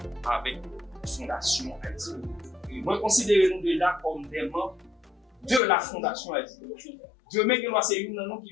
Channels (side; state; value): right; drops out; at 5.6 s